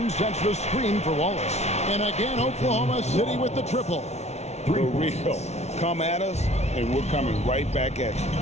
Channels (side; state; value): right; late; 0.32 ms